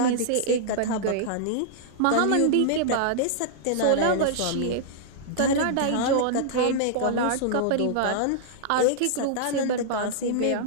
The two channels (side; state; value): both; different; correlation -0.02